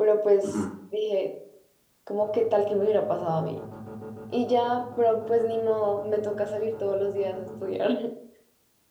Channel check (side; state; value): both; identical; correlation 1.00